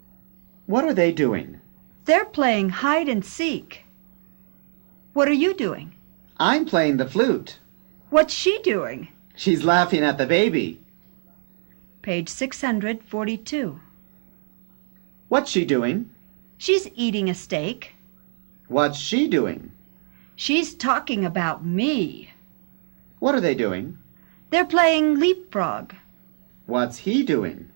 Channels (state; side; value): silent; left; 63 dB below the other